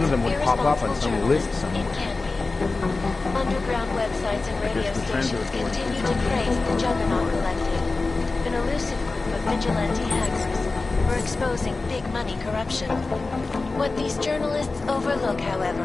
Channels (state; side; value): quieter; right; 3.6 dB